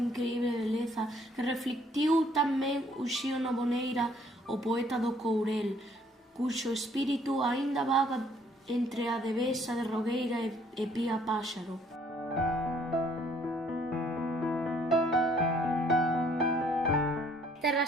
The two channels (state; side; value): normal; both; correlation 0.62